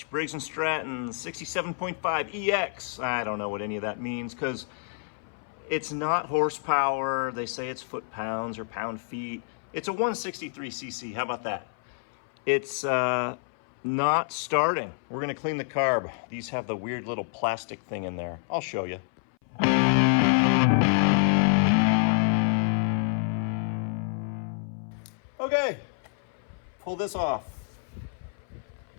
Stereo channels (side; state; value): right; silent; 59 dB below the other